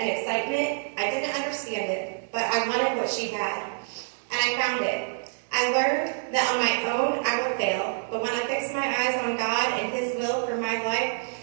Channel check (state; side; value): silent; left; digital silence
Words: excitement. I didn't understand it, but I wanted what she had, and I found it. I learned that on my own I will fail, but when I fix my eyes on God and His will for my life,